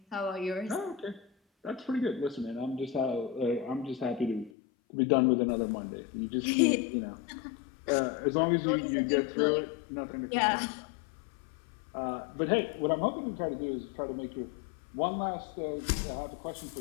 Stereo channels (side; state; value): right; drops out; at 4.5 s